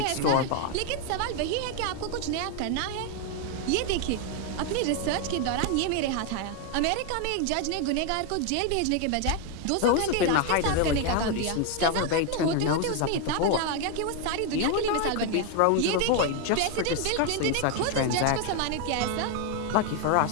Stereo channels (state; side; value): different; both; correlation 0.01